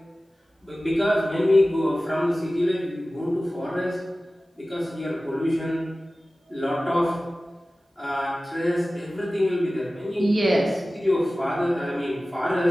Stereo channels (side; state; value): both; normal; correlation 0.96